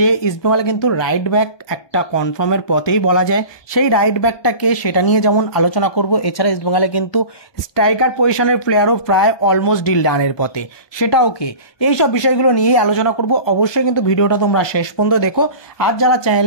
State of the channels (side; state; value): right; late; 1.2 ms